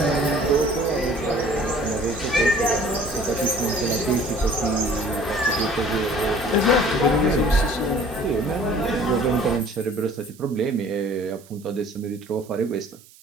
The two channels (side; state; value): right; noise; hiss, 25 dB below the sound